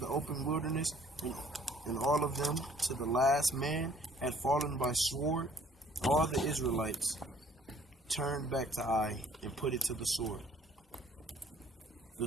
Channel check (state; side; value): normal; both; correlation 0.58